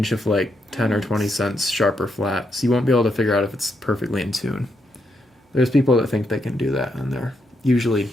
of, like, 10 or 20 cents sharp or flat. So you won't be able to figure out if it's perfectly in tune. There's people that think they can do that, and they're usually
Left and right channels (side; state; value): both; normal; correlation 0.80